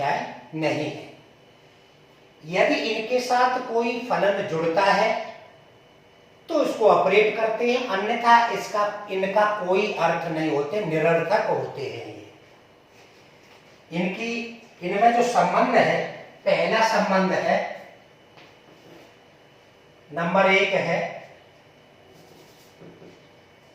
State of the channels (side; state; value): both; identical; correlation 1.00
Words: नहीं है। यदि इनके साथ कोई फलन जुड़ता है तो इसको ऑपरेट करते हैं, अन्यथा इनका कोई अर्थ नहीं होते, निरर्थक होते हैं। इनमें जो संबंध है, पहला संबंध है नंबर 1 है,